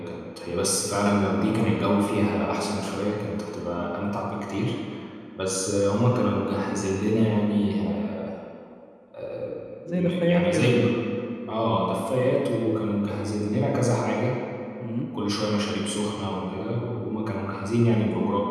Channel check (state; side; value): identical; both; correlation 1.00